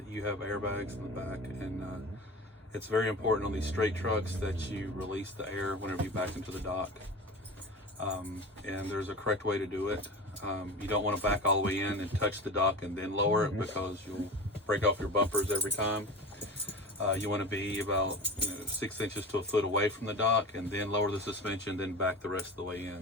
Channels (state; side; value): normal; both; correlation 0.32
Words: you have airbags in the back, and it's very important on these straight trucks that you release the air whenever you back into the dock. And there's a correct way to do it. You don't want to back all the way in and touch the dock and then lower it, because you'll break off your bumpers every time. You want to be about 6 inches to a foot away from the dock, and then lower the suspension, then back the rest of the way